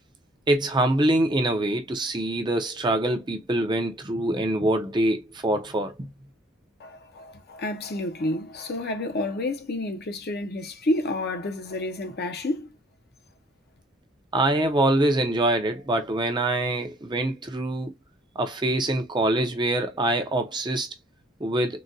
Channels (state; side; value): normal; both; correlation 0.57